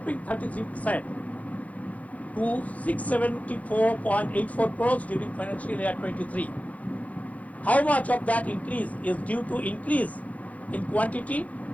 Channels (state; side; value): late; right; 0.070 ms